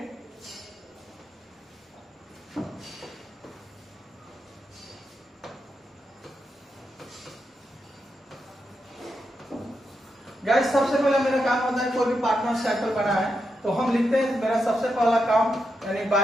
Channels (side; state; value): both; normal; correlation 0.85